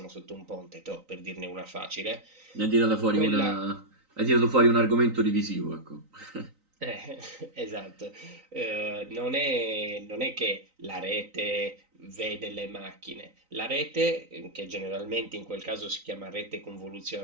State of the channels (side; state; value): left; late; 3.9 ms